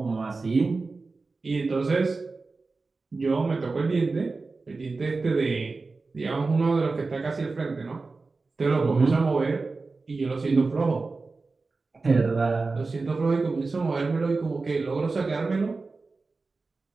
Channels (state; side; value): quieter; left; 3.9 dB